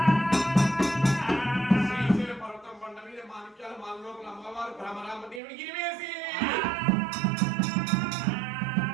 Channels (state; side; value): drops out; left; at 5.4 s